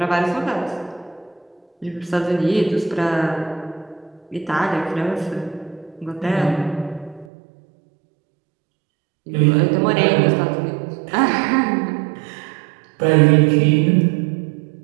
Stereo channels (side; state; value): left; drops out; at 7.2 s